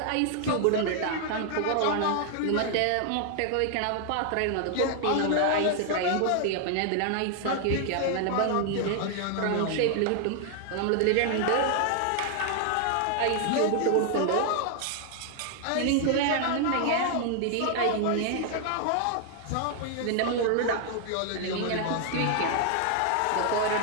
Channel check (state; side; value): different; both; correlation 0.00